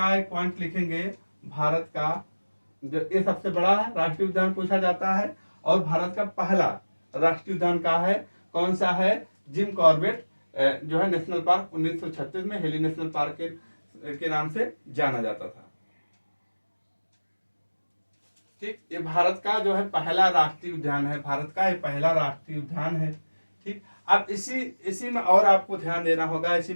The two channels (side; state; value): both; inverted; correlation -1.00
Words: है, पॉइंट लिखेंगे, भारत का जो ये सबसे बड़ा राष्ट्रीय उद्यान पूछा जाता है, और भारत का पहला राष्ट्रीय उद्यान का है, कौन सा है, जिम कॉर्बेट जो है नेशनल पार्क, 1936 में हेली नेशनल पार्क के नाम से जाना जाता था। ठीक, ये भारत का जो है पहला राष्ट्रीय उद्यान है, भारत का ये पहला राष्ट्रीय उद्यान है। ठीक, अब इसी में और आपको ध्यान देना होगा, इसी